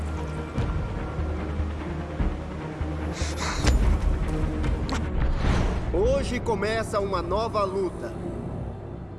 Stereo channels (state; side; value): identical; both; correlation 1.00